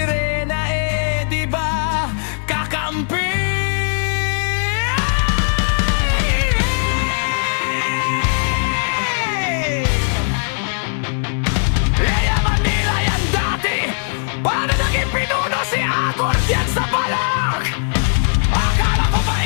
eh di ba kakampi? Yayaman nila yan dati, paano naging pinuno si Agor yan sa balak? Akala ko ba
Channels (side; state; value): right; silent; digital silence